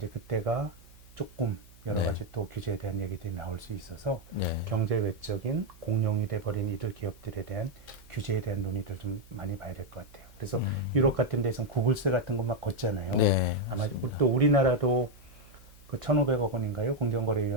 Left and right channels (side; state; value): right; noise; hum, 23 dB below the sound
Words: 그때가 조금 여러 네. 가지 또 규제에 대한 얘기들이 나올 수 있어서 네. 경제 외적인 공룡이 돼버린 이들 기업들에 대한 규제에 대한 논의들 좀 많이 봐야 될 것 같아요. 그래서 유럽 같은 데서는 구글세 같은 거 막 걷잖아요. 네. 아마 맞습니다. 또 우리나라도 그 1,500억 원인가요?